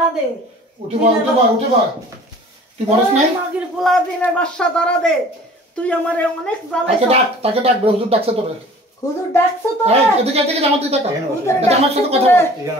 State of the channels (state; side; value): normal; both; correlation 0.47